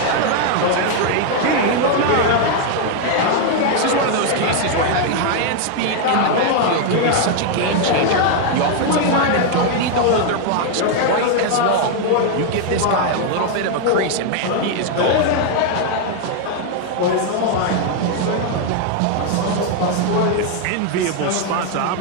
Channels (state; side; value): different; both; correlation 0.00